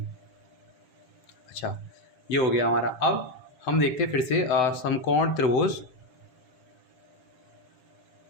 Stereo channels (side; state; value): right; late; 7.9 ms